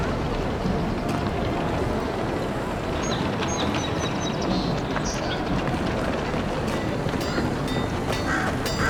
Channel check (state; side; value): identical; both; correlation 1.00